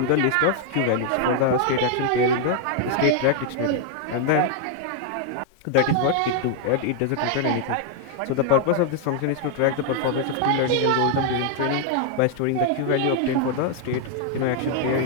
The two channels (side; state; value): both; different; correlation 0.00